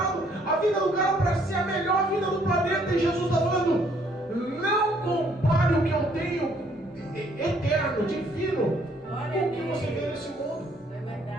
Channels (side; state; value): both; normal; correlation 0.65